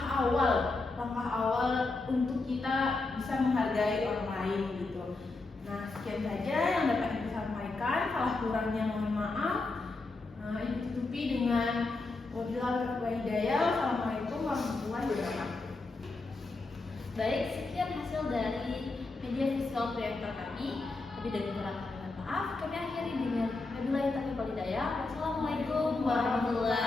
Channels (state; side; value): quieter; right; 3.5 dB